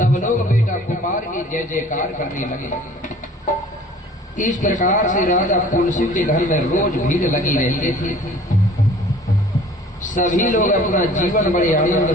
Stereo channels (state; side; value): normal; both; correlation 0.49